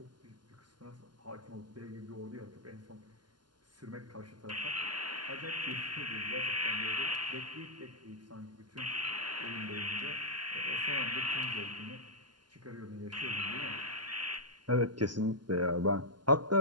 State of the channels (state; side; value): late; left; 0.71 ms